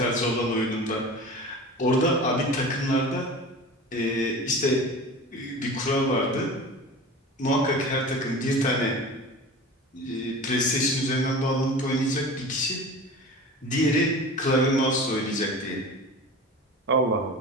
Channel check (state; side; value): normal; both; correlation 0.35